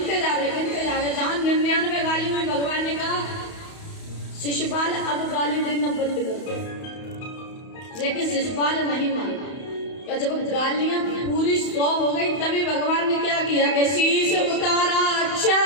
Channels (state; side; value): late; right; 31 ms